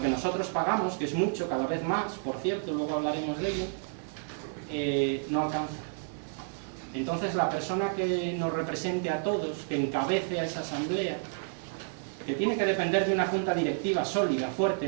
que nosotros pagamos, que es mucho, cada vez más, por cierto, luego hablaremos de ello, no alcanza. Entonces la persona que nos represente a todos, que encabece a esa asamblea, que tiene que depender de una junta directiva sólida, fuerte,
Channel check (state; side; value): silent; left; 56 dB below the other